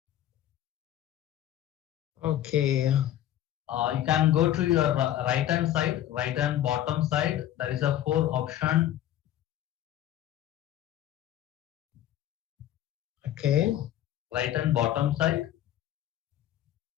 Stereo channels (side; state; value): right; quieter; 12.3 dB